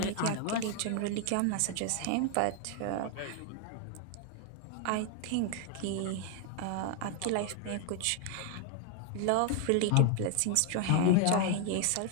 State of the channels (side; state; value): both; different; correlation 0.00